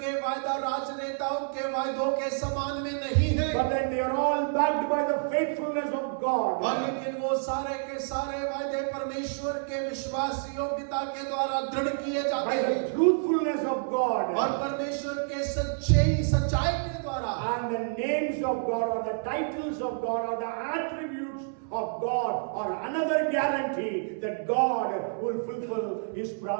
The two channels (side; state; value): left; silent; 59 dB below the other